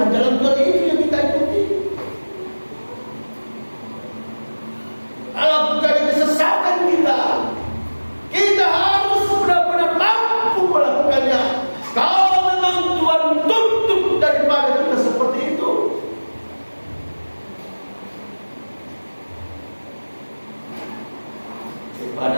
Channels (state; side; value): inverted; both; correlation -1.00